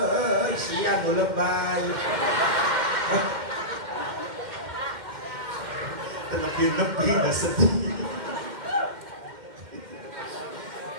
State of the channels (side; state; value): left; late; 2.1 ms